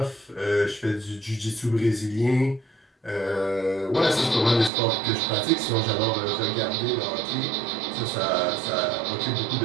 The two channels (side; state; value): left; drops out; at 4.7 s